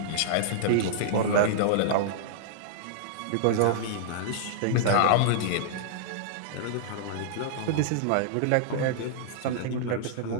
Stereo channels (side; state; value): both; different; correlation -0.02